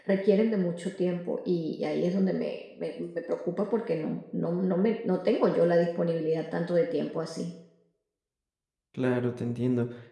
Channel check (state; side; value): identical; both; correlation 1.00